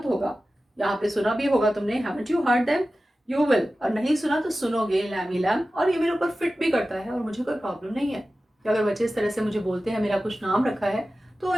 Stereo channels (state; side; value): normal; both; correlation 0.95